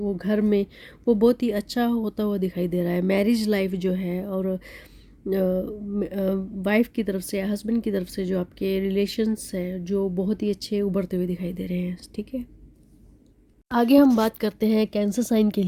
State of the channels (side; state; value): both; identical; correlation 1.00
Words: घर में, वो बहुत ही अच्छा होता हुआ दिखाई दे रहा है। मैरिज लाइफ जो है, और वाइफ की तरफ से, हस्बैंड की तरफ से जो आपके रिलेशंस हैं जो बहुत ही अच्छे उभरते हुए दिखाई दे रहे हैं, ठीक है। आगे हम बात करते हैं कैंसर साइन के